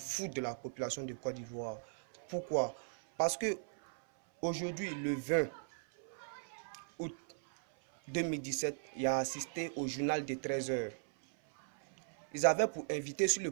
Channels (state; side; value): silent; left; 52 dB below the other